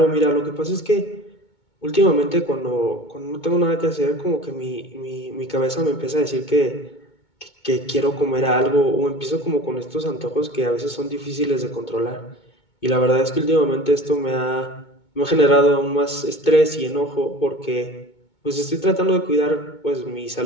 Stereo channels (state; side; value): late; right; 2.2 ms